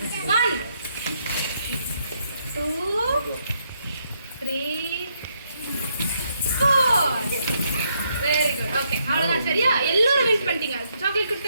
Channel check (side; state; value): both; inverted; correlation -0.75